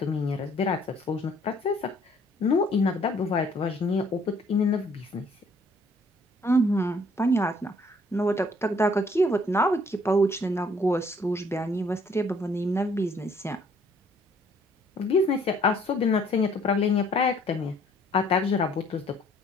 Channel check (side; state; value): both; normal; correlation 0.62